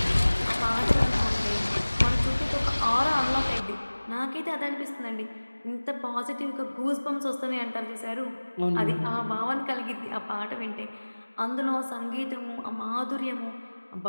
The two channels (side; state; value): both; inverted; correlation -1.00